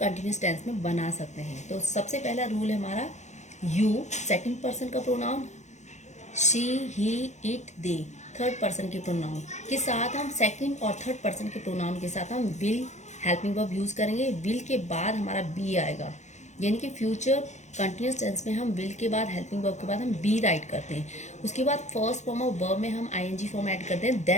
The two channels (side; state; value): right; late; 0.34 ms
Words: टेंस में बना सकते हैं। तो सबसे पहला रूल है हमारा यू, सेकंड पर्सन का pronoun, she, he, it, they third person के प्रोनाउन के साथ हम सेकंड और थर्ड पर्सन के प्रोनाउन के साथ हम विल हेल्पिंग वर्ब यूज करेंगे। विल के बाद हमारा बी आएगा, यानी कि फ्यूचर कंटिन्यूस टेंस में हम विल के बाद हेल्पिंग वर्ब के बाद हम बी राइट करते हैं। उसके बाद फर्स्ट फॉर्म ऑफ वर्ब में हम आईएनजी फॉर्म ऐड करते हैं,